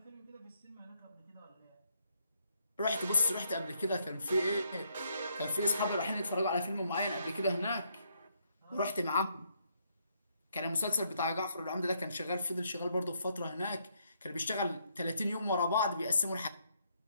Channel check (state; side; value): inverted; both; correlation -0.74